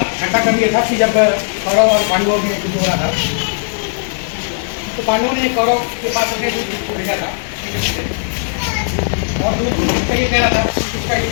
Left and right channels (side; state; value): right; silent; 60 dB below the other